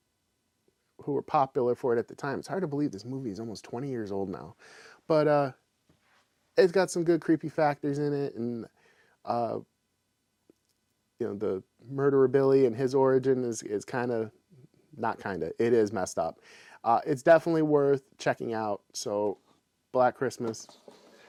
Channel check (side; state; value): both; identical; correlation 1.00